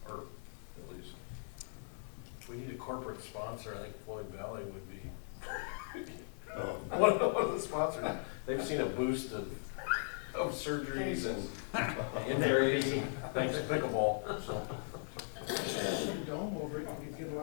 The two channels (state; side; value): silent; right; digital silence